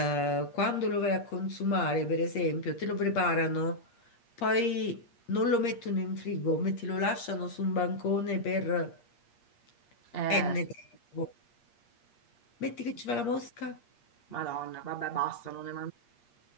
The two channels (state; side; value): late; right; 8.5 ms